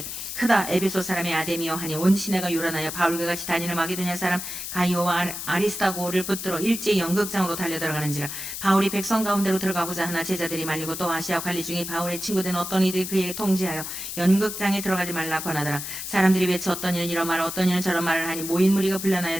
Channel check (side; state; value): left; noise; hiss, 7 dB below the sound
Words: 크다 에베소 사람의 아데미여 하니 온 시내가 요란하여 바울과 같이 다니는 마게도냐 사람 가이오와 아리스타고를 붙들어 일제히 연극장으로 달려들어가는지라. 바울이 백성 가운데로 들어가고자 하나 제자들이 말리고 또 아시아 관리 중에 바울의 친구된 어떤 이들이 그에게 통지하여 연극장에 들어가지 말라 권하더라. 사람들이 외쳐 어떤 이는 이런 말을 어떤 이는 저런 말을 하니 모인 무리가